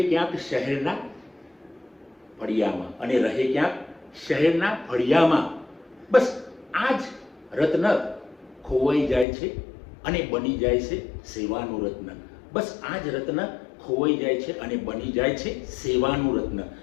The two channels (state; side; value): drops out; right; at 9.2 s